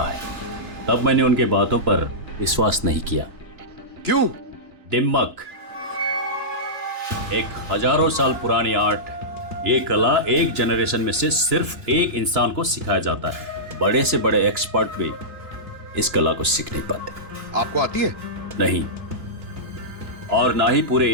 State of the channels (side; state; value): left; late; 3.0 ms